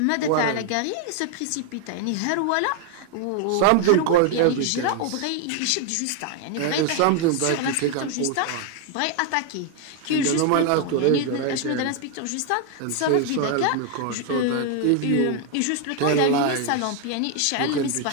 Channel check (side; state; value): both; different; correlation 0.01